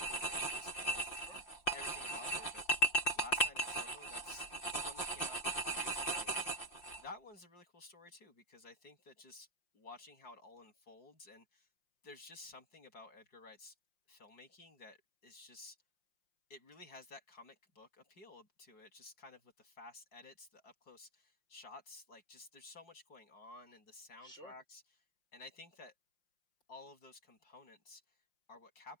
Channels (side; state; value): right; late; 5.7 ms